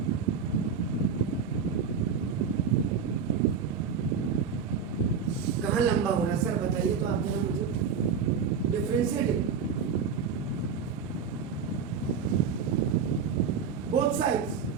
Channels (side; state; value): left; quieter; 6.3 dB